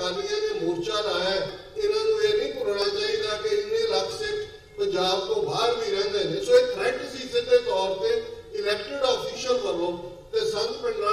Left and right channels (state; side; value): identical; both; correlation 1.00